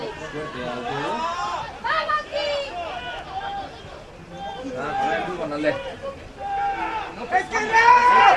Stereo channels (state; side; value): identical; both; correlation 1.00